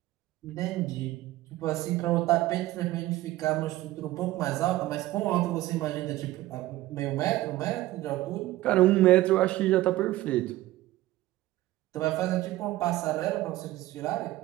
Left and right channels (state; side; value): quieter; left; 16.4 dB